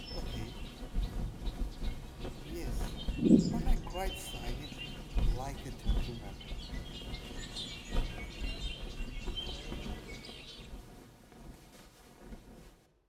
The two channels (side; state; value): both; identical; correlation 1.00